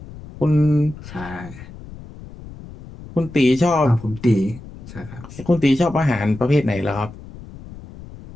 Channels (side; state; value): left; noise; rumble, 16 dB below the sound